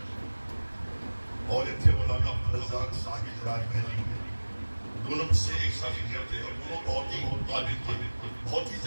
اور تھے مولانا عبدالرزاق صاحب راج محلی دونوں مجھ سے ایک ساتھ سینئر تھے اور دونوں بہت ہی طالب تھے بہت ہی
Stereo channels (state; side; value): inverted; both; correlation -1.00